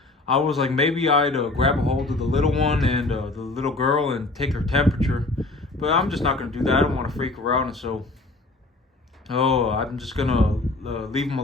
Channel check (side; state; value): right; quieter; 3.1 dB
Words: I was like, maybe I'd grab a hold of the little one and the little girl and take her temperature. But I'm just not going to do that. I don't want to freak her out. And so, I'm just going to leave them